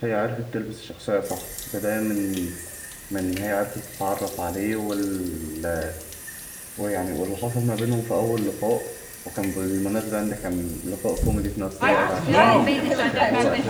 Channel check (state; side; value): identical; both; correlation 1.00